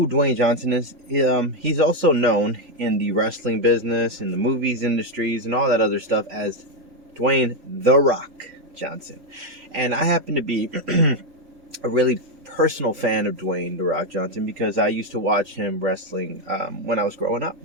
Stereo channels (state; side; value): late; left; 3.4 ms